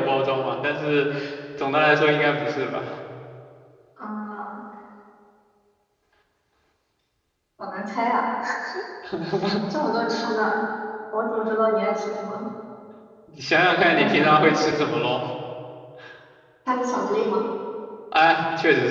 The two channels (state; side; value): identical; both; correlation 1.00